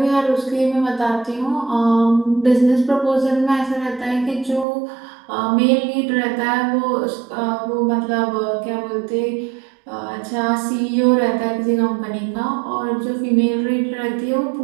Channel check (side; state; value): left; drops out; at 4.7 s